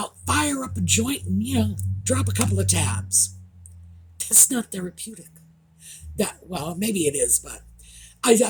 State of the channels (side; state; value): both; identical; correlation 1.00